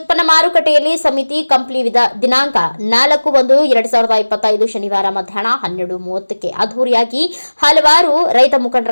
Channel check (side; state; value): both; inverted; correlation -1.00